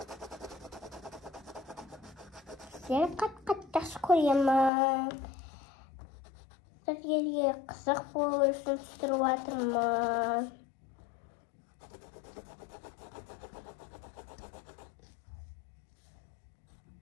Сені қатты жақсы көремін. Сіздерге қызық болу үшін түсіріп жатырмын.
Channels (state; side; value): drops out; right; at 4.7 s